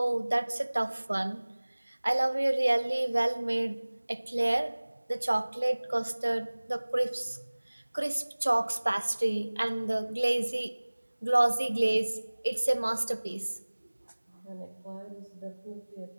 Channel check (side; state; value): both; inverted; correlation -1.00